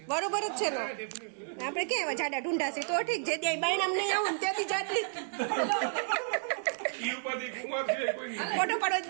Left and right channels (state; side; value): silent; left; digital silence